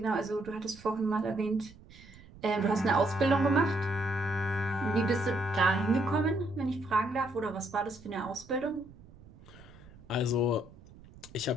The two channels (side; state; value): right; noise; rumble, 21 dB below the sound